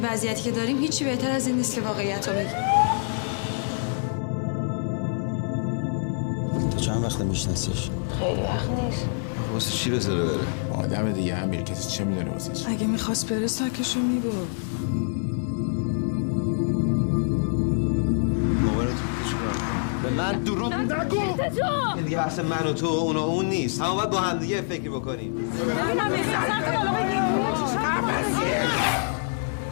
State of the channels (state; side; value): silent; right; digital silence